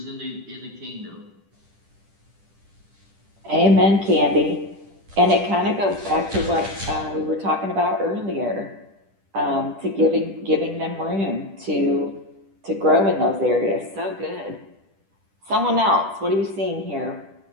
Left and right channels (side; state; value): left; late; 10 ms